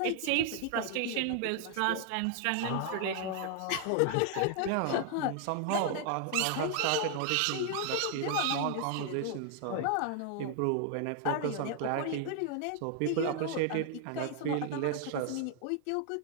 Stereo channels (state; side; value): different; both; correlation 0.00